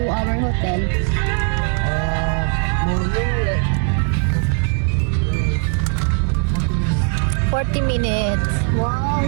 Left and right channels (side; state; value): left; quieter; 39.9 dB